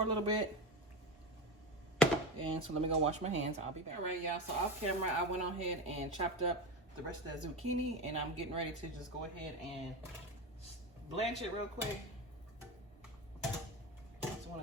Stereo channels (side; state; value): both; normal; correlation 0.21